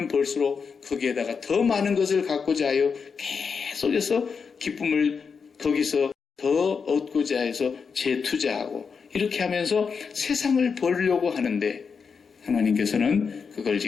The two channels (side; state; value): right; quieter; 5.7 dB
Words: 벌수록 거기에다가 더 많은 것을 갖고자 하여 계속해서 기쁨을 거기서 더 얻고자 해서 재투자하고 이렇게 하면서 세상을 벌려고 하는데 하나님께서는 그걸